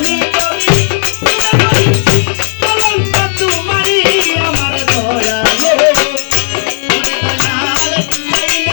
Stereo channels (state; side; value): silent; right; digital silence